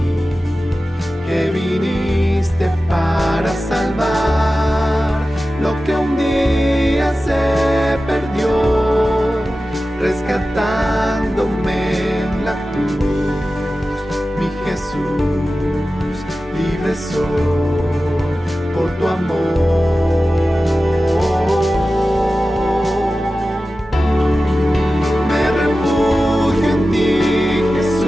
que viniste para salvar lo que un día se perdió, rescatándome en la cruz, mi Jesús. Libre soy por tu amor. Me refugio en ti,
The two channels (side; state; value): both; normal; correlation 0.94